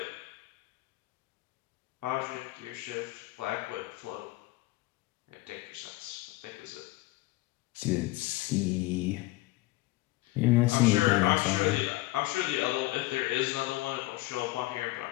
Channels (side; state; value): right; quieter; 19.6 dB